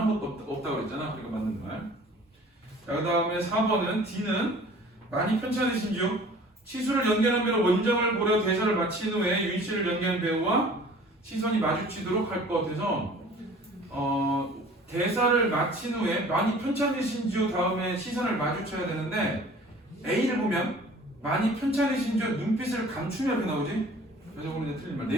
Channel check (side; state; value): both; normal; correlation 0.48